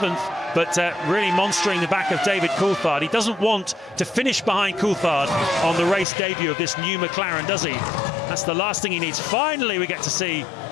but really monstering the back of David Coulthard. He doesn't want to finish behind Coulthard on the race debut of this new McLaren, does he? That's the last thing he needs. Finally, we get to see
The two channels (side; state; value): right; drops out; at 6.1 s